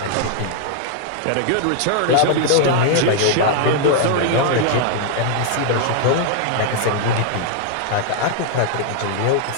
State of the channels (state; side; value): different; both; correlation 0.00